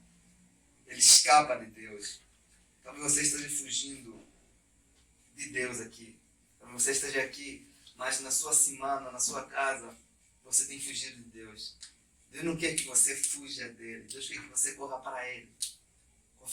Ele escapa de Deus. Talvez você esteja fugindo de Deus aqui. Talvez você esteja aqui, mas na sua semana, na sua casa, você tem fugido de Deus. Deus não quer que você fuja dele. Deus quer que você corra para ele,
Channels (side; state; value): both; identical; correlation 1.00